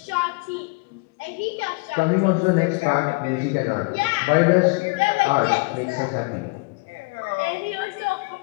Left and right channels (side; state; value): right; quieter; 28.3 dB